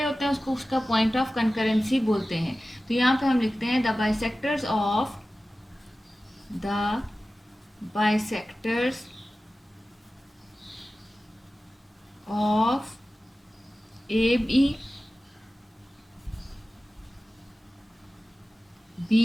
होते हैं उसको उसका पॉइंट ऑफ कंकरेंसी बोलते हैं। तो यहाँ पे हम लिखते हैं the bisectors of A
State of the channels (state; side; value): normal; both; correlation 0.96